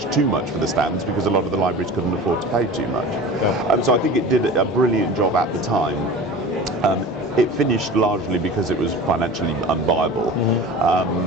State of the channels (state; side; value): normal; both; correlation 0.36